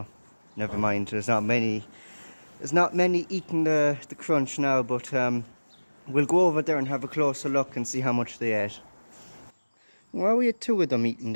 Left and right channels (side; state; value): both; inverted; correlation -1.00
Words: never mind. There's not many. There's not many eating the crunch now, but we'll go over there and have a closer look and see how much they ate. Well, we had two of them eating